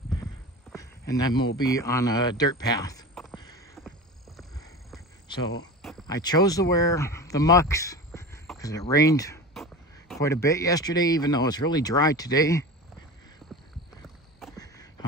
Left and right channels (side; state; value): both; normal; correlation 0.30